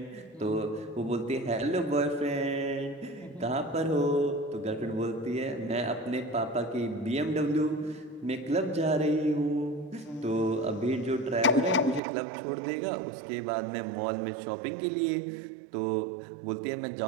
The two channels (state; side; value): drops out; left; at 12.0 s